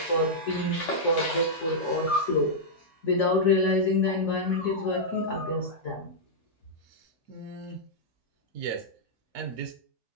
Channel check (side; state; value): both; normal; correlation -0.08